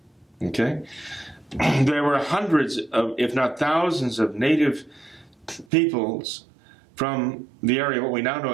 Okay? There were hundreds of, if not thousands of native peoples from the area, what we now know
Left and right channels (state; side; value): drops out; left; at 5.7 s